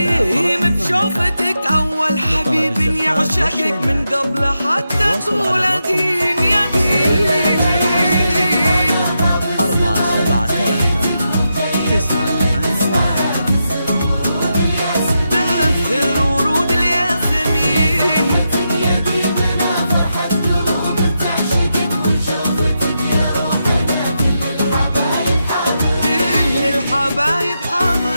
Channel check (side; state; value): both; inverted; correlation -0.86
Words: بشوفتك اول حبيب يعشقك من قبل حتى تولدين يا دين. 4 7 3 9 8 1 تأثر ورود الياسمين. كل الحبايب